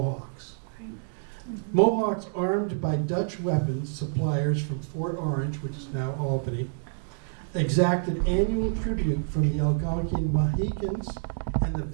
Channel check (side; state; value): left; silent; digital silence